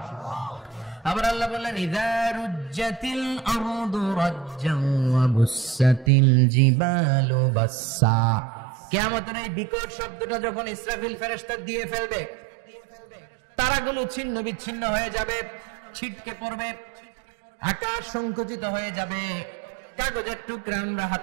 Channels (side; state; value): left; drops out; at 6.1 s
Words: আবার আল্লাহ বললেন ইযা রুজ্জাতিল আরদু রাজ্জান ওয়া বুসাতিল জিবালু বাসসা। কিয়ামতের এই বিকট শব্দটা যখন ইসরাফিল ফেরেশতা দিয়ে ফেলবে, তারাগুলো ছিন্ন বিচ্ছিন্ন হয়ে যাবে, ছিটকে পড়বে, আকাশ সংকুচিত হয়ে যাবে। কাগজের টুকরা আমরা